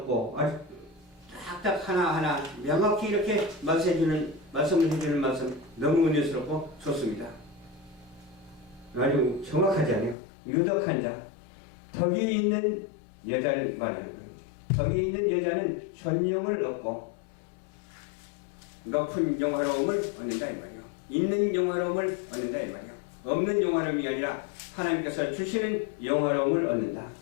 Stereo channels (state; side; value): drops out; right; at 10.2 s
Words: 아주 딱딱 하나하나 명확히 이렇게 말씀을 해주는 말씀 너무 은혜스럽고 좋습니다. 아주 정확하지 않아요. 유독한 자, 덕이 있는 여자를 말하는 거예요. 덕이 있는 여자는 전용을 얻고 높은 영화로움을 얻는다 이 말이에요. 있는 영화로움을 얻는다 이 말이에요. 없는 영화로움이 아니라 하나님께서 주시는 영화로움을 얻는다.